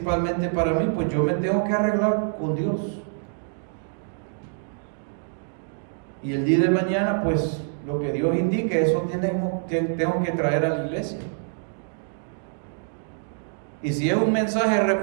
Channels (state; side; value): silent; left; digital silence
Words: para mí, pues yo me tengo que arreglar con Dios. Y el día de mañana, pues lo que Dios indique, eso tengo que traer a la iglesia. Y si es un mensaje